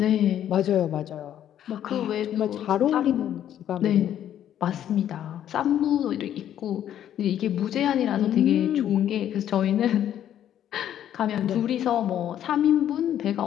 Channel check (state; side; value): quieter; right; 10.7 dB